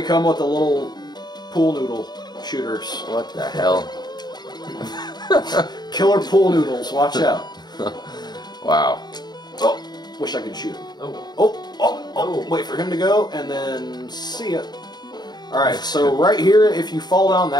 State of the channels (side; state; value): right; late; 0.20 ms